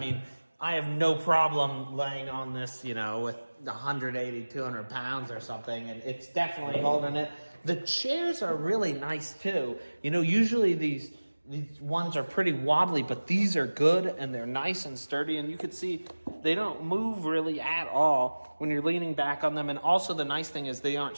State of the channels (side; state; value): both; inverted; correlation -1.00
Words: I have no problem laying on this, with 180, 200 pounds or something, and it's definitely holding it. The chairs are really nice too. Usually these ones are pretty wobbly, but these are good and they're nice and sturdy, and you can see they don't move really at all when you're leaning back on them. And also the nice thing is they aren't